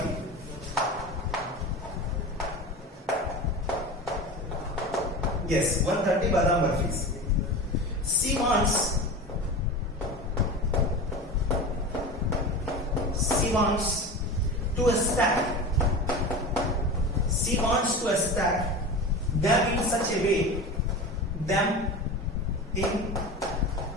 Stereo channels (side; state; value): both; normal; correlation 0.29